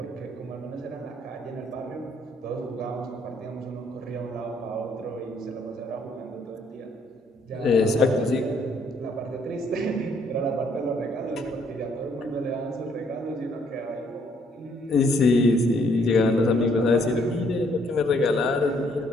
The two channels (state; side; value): normal; both; correlation 0.67